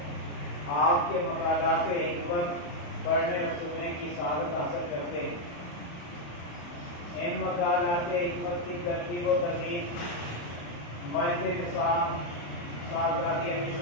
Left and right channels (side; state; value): right; late; 35 ms